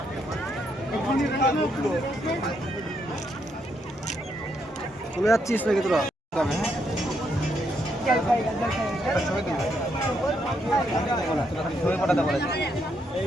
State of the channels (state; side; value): normal; both; correlation 0.77